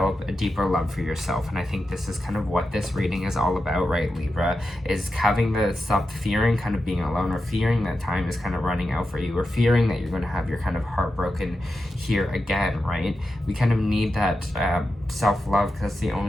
a deeper love for yourself? And I think this is kind of what this reading is all about, right, Libra? Is having to stop fearing kind of being alone, or fearing that time is kind of running out for you, or fearing that you're going to have your kind of heart broken here again, right? We kind of need that self-love, because the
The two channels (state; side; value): normal; both; correlation 0.90